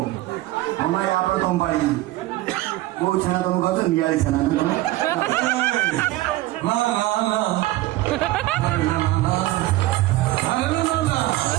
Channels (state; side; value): quieter; left; 17.3 dB